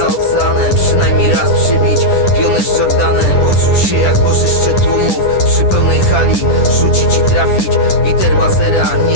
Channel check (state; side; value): late; right; 10 ms